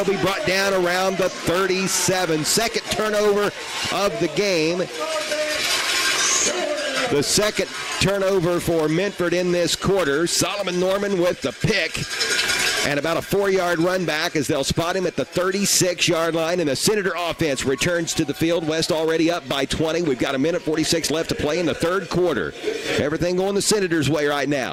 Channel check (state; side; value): identical; both; correlation 1.00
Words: be brought down around the 37. Second turnover of the game. The second turnover for Minford in this quarter. Solomon Norman with the pick. And about a 4-yard run back as they'll spot him at the 36-yard line. And the Senator offense returns to the field. West already up by 20. We've got 1:46 left to play in the third quarter. Everything going the Senators' way right